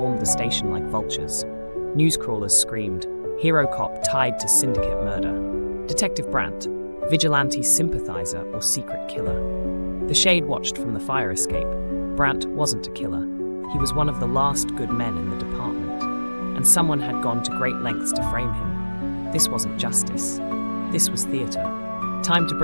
the station like vultures. Newscrawlers screamed, "Hero cop tied to syndicate murder." Detective Brandt, vigilante sympathizer or secret killer. The Shade watched from the fire escape. Brandt wasn't a killer. He was one of the last good men in the department, and someone had gone to great lengths to frame him. This wasn't justice. This was theater. Time to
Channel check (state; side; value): inverted; both; correlation -1.00